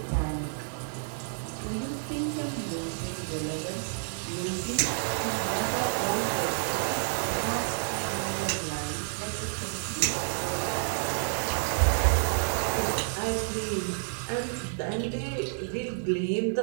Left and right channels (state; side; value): silent; left; digital silence